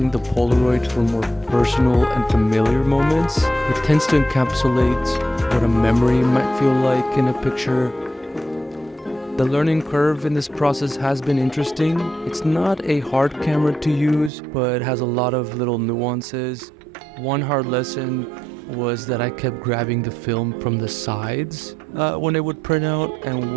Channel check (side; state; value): left; drops out; at 14.3 s